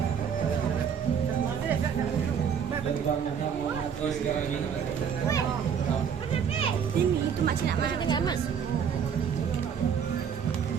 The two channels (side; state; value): left; quieter; 7.4 dB